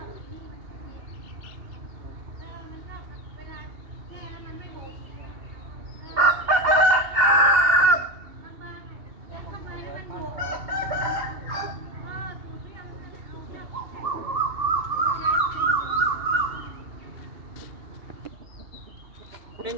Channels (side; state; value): left; late; 2.8 ms